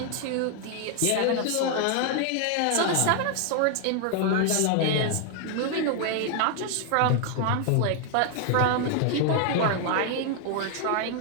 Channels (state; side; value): different; both; correlation 0.00